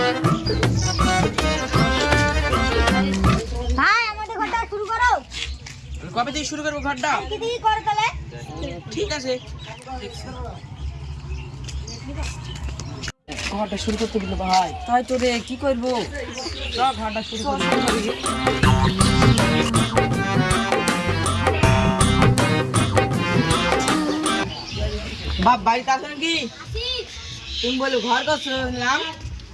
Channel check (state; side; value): identical; both; correlation 1.00